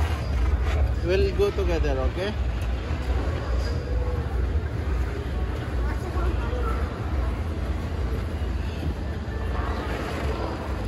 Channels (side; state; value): both; identical; correlation 1.00